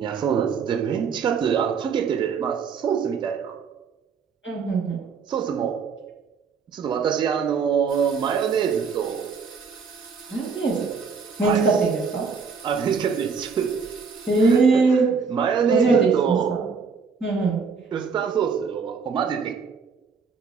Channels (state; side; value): quieter; left; 5.4 dB